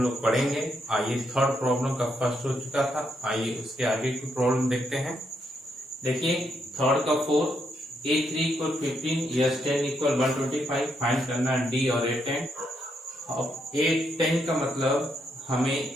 लोग पढ़ेंगे। आइए थर्ड प्रॉब्लम का फर्स्ट हो चुका था, आइए उसके आगे की प्रॉब्लम देखते हैं। देखिए थर्ड का 4 A3 equal 15 S10 equal 125 find करना D और A10। अब A10 का मतलब हमें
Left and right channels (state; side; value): normal; both; correlation 0.78